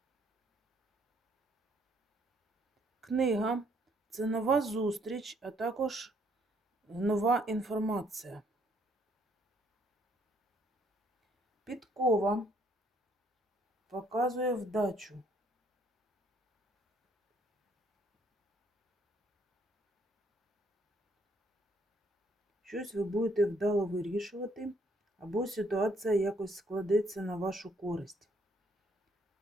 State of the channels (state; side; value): normal; both; correlation 0.67